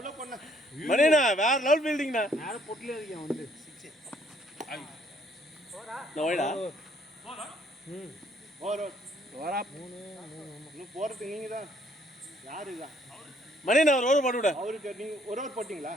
பண்ண மணினா வேற லெவல் ஃபீல்டிங்னா நேரா பொட்ல இருக்கேன் வந்து நோய்டா ஓவர் வரா இன்னும் போறது நீங்க தான் யாரு தான் மணினா ஒரு ஓவர் போட்டு விடு. அவருக்கு நீங்க ஒரு ஓவர் போட்டீங்களா?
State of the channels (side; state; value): both; normal; correlation 0.65